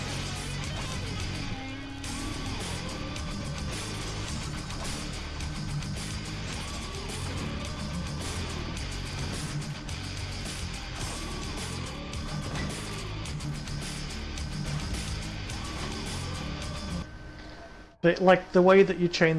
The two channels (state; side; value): identical; both; correlation 1.00